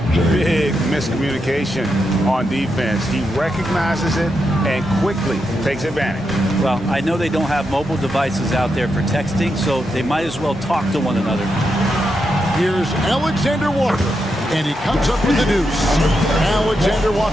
Big miscommunication on defense. He recognizes it and quickly takes advantage. Well, I know they don't have mobile devices out there for texting, so they might as well talk to one another. Here's Alexander Walker, and he comes up with the deuce. Alexander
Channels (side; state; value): both; normal; correlation 0.84